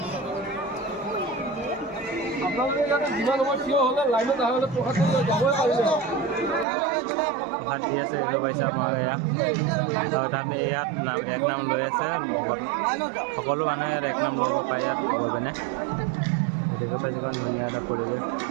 প্ৰসাদ দি আছে, দেখিব পাইছে আপোনালোকে ইয়াত। আৰু তাত ইয়াত 1 নাম লৈ আছে। সকলো মানুহে ইয়াত 1 নাম ল'ব পাৰে ইয়াত গৈ পিনে। দেখিব পাইছে কিমান ধুনীয়া এটা পৰিৱেশ।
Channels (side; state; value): left; drops out; at 6.7 s